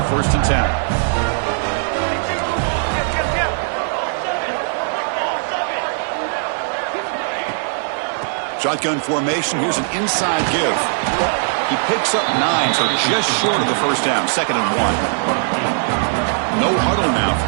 first and 10. Shotgun formation. Here's an inside give. He picks up 9, so just short of the first down. Second and 1. No huddle now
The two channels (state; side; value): silent; left; digital silence